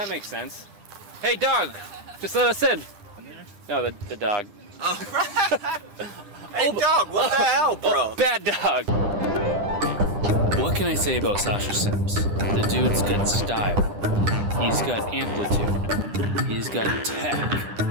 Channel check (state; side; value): late; left; 10 ms